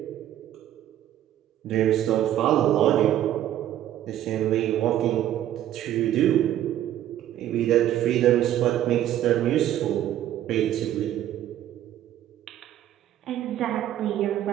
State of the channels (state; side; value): quieter; left; 12.1 dB